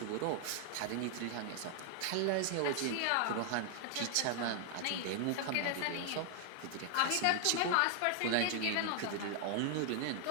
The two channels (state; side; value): different; both; correlation 0.00